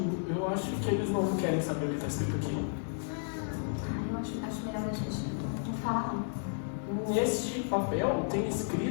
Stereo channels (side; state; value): right; silent; digital silence